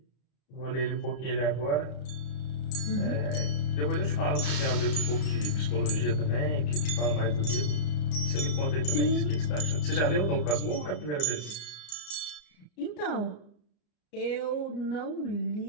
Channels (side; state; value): right; late; 34 ms